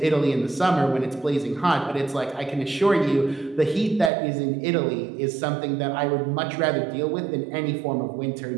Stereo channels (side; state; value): left; drops out; at 4.1 s